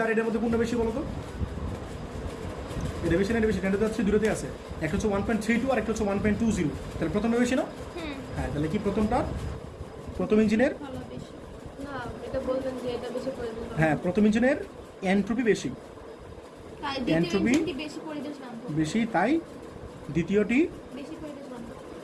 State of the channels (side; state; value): both; identical; correlation 1.00